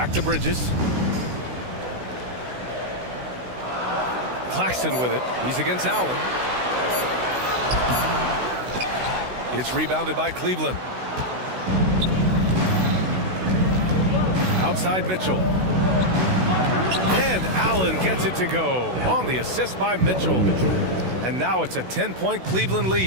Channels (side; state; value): left; late; 16 ms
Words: to Bridges. Claxton with it. He's against Allen. It's rebounded by Cleveland. Outside Mitchell. And Allen gets it to go on the assist by Mitchell. And now it's a 10-point Cleveland